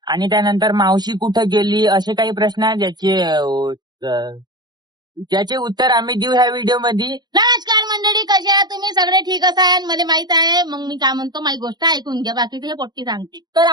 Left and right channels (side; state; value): left; late; 0.20 ms